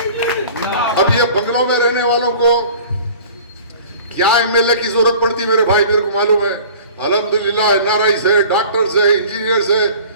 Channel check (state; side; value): inverted; both; correlation -0.44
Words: اب یہ بنگلوں میں رہنے والوں کو کیا ایم ایل اے کی ضرورت پڑتی میرے بھائی؟ میرے کو معلوم ہے، الحمدللہ این آر آئیز ہے، ڈاکٹرز ہے، انجینئرز ہے،